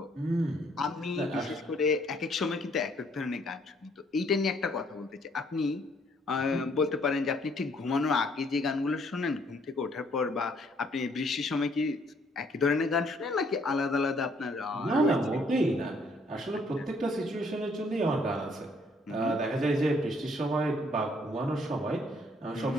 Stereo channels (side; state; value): both; normal; correlation 0.66